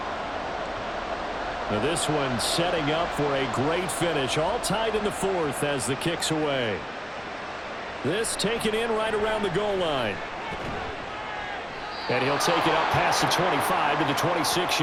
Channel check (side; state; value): both; identical; correlation 1.00